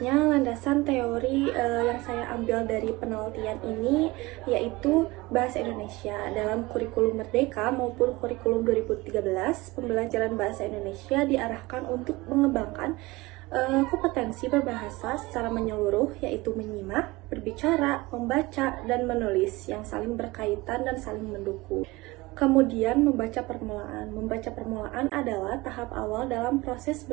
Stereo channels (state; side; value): quieter; left; 21.7 dB